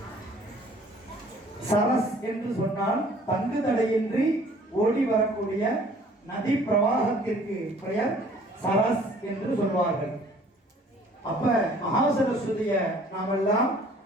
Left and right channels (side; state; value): both; normal; correlation 0.55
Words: சரஸ் என்று சொன்னால் தங்கு தடையின்றி ஓடி வரக்கூடிய நதி பிரவாகத்திற்கு பெயர் சரஸ் என்று சொல்வார்கள். அப்ப மகாசரஸ்வதிய நாமெல்லாம்